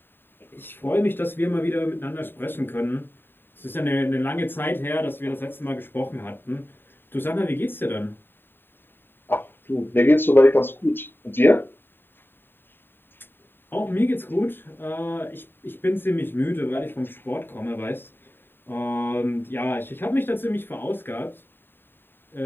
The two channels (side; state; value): right; late; 0.098 ms